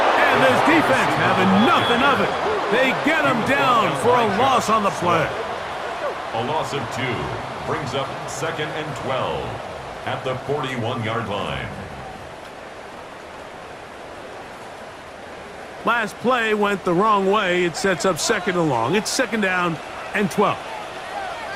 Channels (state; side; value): identical; both; correlation 1.00